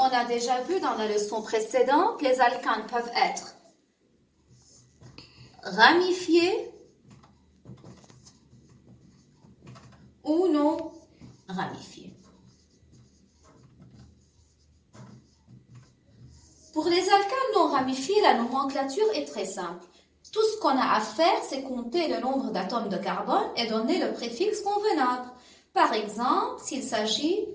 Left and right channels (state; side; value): identical; both; correlation 1.00